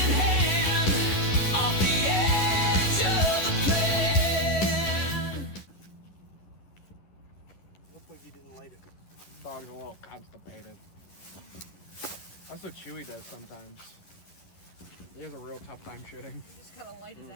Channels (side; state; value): right; late; 11 ms